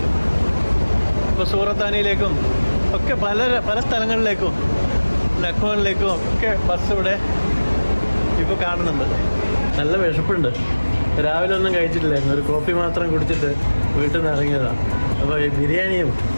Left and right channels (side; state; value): both; inverted; correlation -1.00